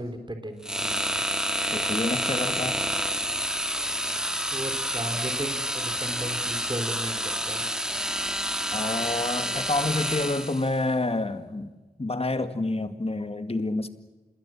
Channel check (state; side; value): normal; both; correlation 0.52